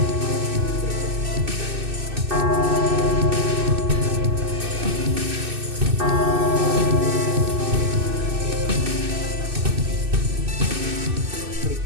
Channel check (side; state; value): left; late; 2.6 ms